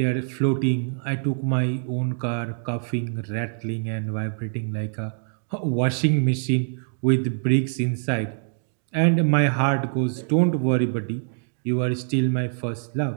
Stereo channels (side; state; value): left; silent; digital silence